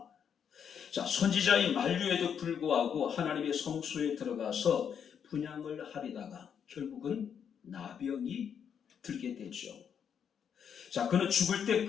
자, 선지자의 만류에도 불구하고 하나님의 성소에 들어가서 분향을 하려다가 결국은 나병이 들게 되죠. 자, 그는 죽을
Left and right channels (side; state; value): right; quieter; 7.8 dB